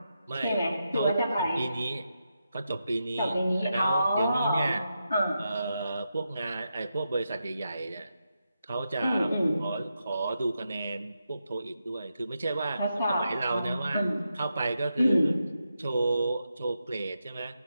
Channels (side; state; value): both; inverted; correlation -0.86